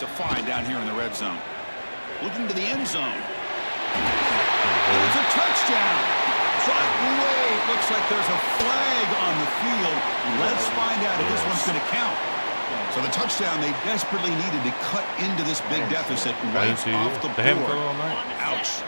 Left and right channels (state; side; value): inverted; both; correlation -1.00